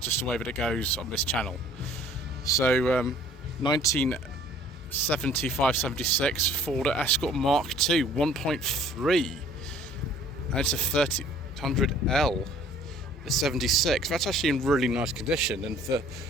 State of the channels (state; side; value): normal; both; correlation 0.54